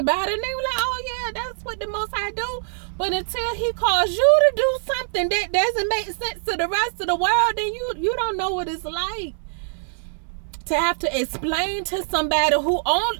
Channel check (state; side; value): silent; left; digital silence